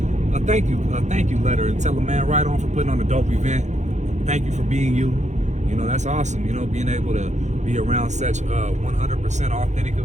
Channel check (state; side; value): late; left; 0.34 ms